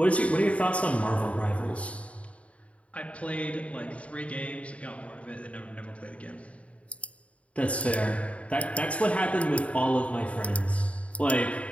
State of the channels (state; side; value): late; right; 0.065 ms